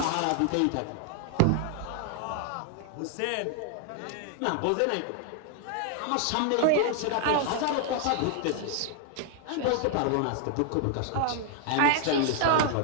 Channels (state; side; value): different; both; correlation 0.00